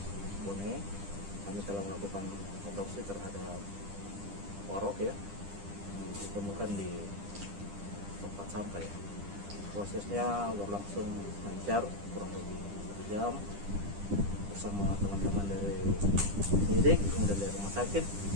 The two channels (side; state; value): left; late; 10 ms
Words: Bone, kami telah melakukan otopsi terhadap Warok ya, ditemukan di tempat sampah ya. Prosesnya berlangsung lancar, kurang lebih 1 jam bersama teman-teman dari penyidik, kemudian dari rumah sakit,